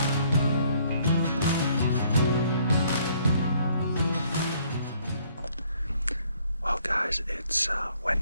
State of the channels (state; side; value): inverted; both; correlation -0.63